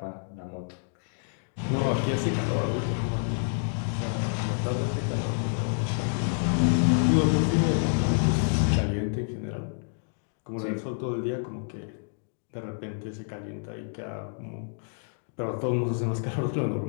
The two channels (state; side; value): silent; right; digital silence